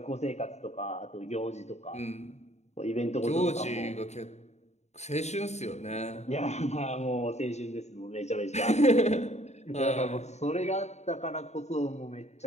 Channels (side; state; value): right; late; 0.32 ms